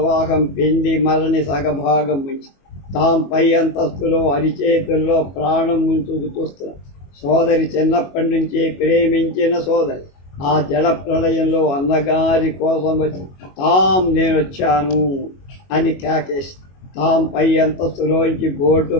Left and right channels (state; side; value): late; right; 22 ms